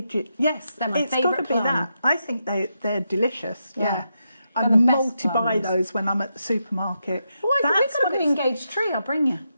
Yes, they're my it's favourite got to be that. I think they're delicious. Yeah. I They're the best multi-buy plums. those when I'm at the supermarket. Oh, we've got a green gauge tree. I'll bring you.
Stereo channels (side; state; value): both; inverted; correlation -0.84